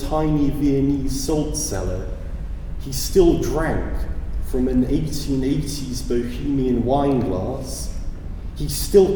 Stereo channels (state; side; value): identical; both; correlation 1.00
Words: Viennese salt cellar. He still drank from an 1880s Bohemian wine glass. He